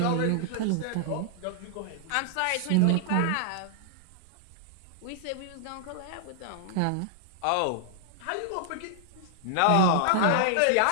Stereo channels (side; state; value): both; different; correlation -0.01